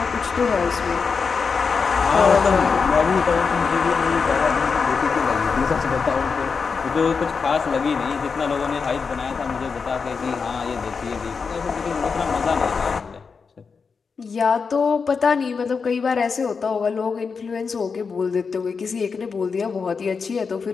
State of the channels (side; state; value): right; quieter; 5.3 dB